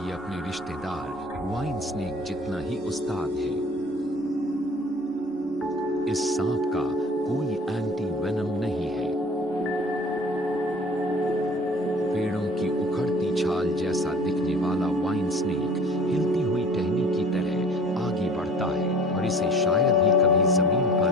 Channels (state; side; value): normal; both; correlation 0.46